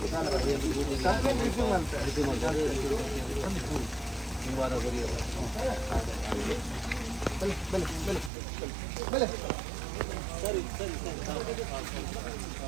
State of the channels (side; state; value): left; drops out; at 8.3 s